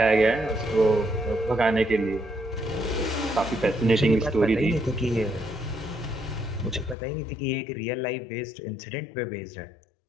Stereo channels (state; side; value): drops out; right; at 7.0 s